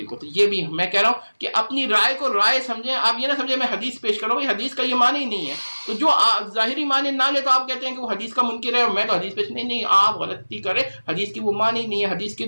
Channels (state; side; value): inverted; both; correlation -1.00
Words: تو یہ بھی میں کہہ رہا ہوں کہ اپنی رائے کو رائے سمجھیں. آپ یہ نہ سمجھیں میں حدیث پیش کر رہا ہوں, یہ حدیث کا یہ معنی ہی نہیں ہے. تو جو ظاہری معنی نہ لے تو آپ کہتے ہیں کہ وہ حدیث کا منکر ہے اور میں تو حدیث پیش نہیں, آپ غلطی کریں. حدیث کی وہ معنی نہیں ہے, حدیث